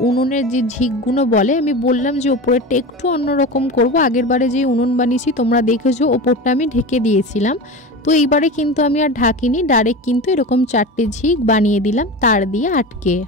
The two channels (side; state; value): both; normal; correlation 0.27